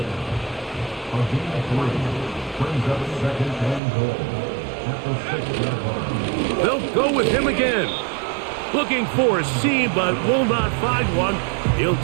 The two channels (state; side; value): drops out; left; at 3.8 s